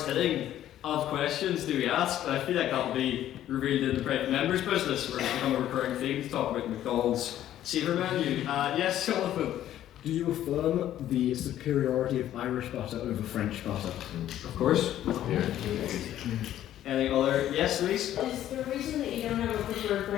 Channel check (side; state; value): right; quieter; 12.2 dB